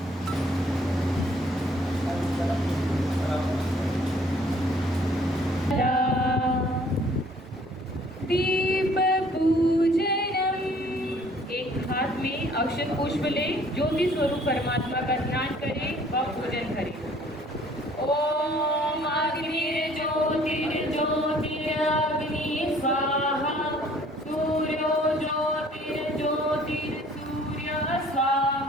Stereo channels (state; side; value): normal; both; correlation 0.57